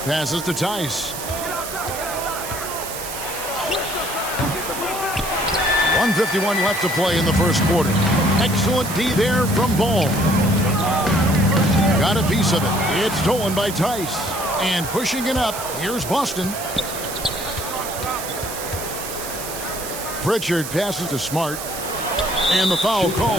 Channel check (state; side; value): noise; right; hiss, 8 dB below the sound